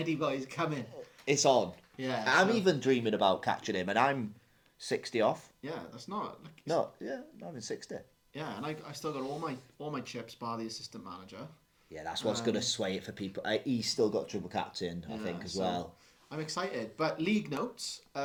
boy's coming. It's on. Yeah. I'm even dreaming about catching him, and I'm 60 off. Yeah, that's not. I'm in 60. Yeah, and I still got all my chips bar the assistant manager. Yeah, that's what's going to sway it for people. He's still got triple captain, I think, as well. I'm excited. But league notes,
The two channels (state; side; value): identical; both; correlation 1.00